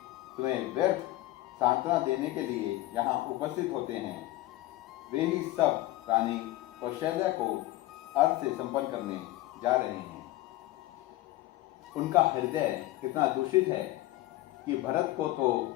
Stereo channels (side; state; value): right; quieter; 17.2 dB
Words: तुम्हें व्यर्थ सांत्वना देने के लिए यहाँ उपस्थित होते हैं। वे ही सब रानी कौशल्या को अर्थ से संपन्न करने जा रहे हैं। उनका हृदय इतना दूषित है कि भरत को